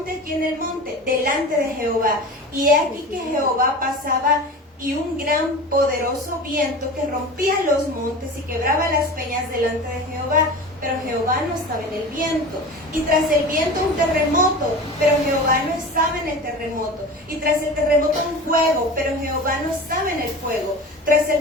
aquí en el monte, delante de Jehová. Y he aquí que Jehová pasaba, y un gran poderoso viento que rompía los montes y quebraba las peñas delante de Jehová. Pero Jehová no estaba en el viento. Y tras el viento un terremoto, pero Jehová no estaba en el terremoto. Y tras el terremoto un fuego, pero Jehová no estaba en el fuego. Tras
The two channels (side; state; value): both; normal; correlation 0.33